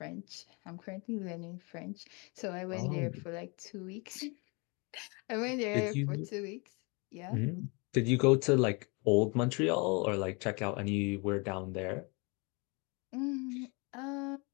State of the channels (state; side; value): quieter; right; 30.5 dB